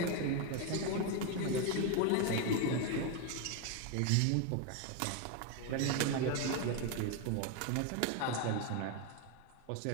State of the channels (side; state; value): both; different; correlation 0.02